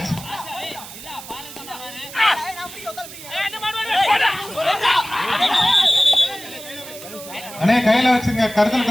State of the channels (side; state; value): right; noise; hiss, 14 dB below the sound